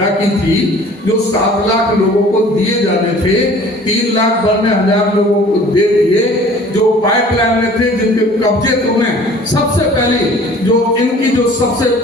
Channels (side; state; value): both; normal; correlation 0.49